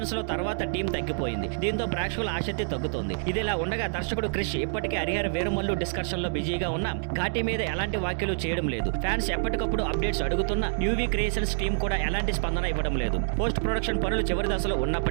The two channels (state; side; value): silent; left; digital silence